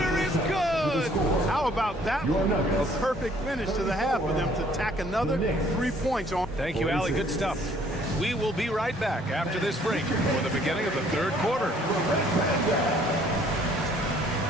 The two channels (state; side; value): normal; both; correlation 0.60